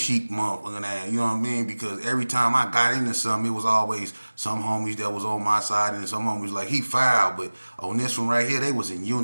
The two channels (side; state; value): both; inverted; correlation -1.00